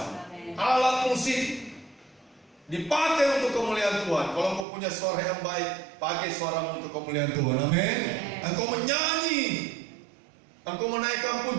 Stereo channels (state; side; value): drops out; left; at 4.7 s